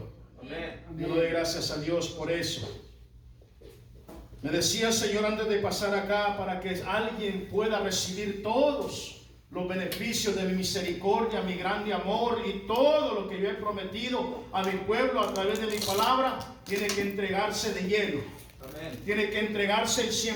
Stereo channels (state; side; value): identical; both; correlation 1.00